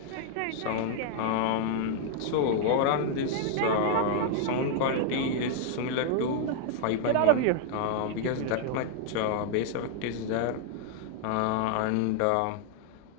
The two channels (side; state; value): both; different; correlation 0.00